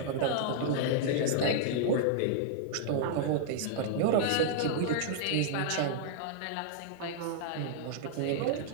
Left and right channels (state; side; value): different; both; correlation -0.02